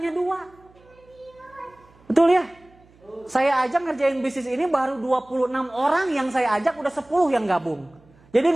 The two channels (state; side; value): noise; right; hum, 29 dB below the sound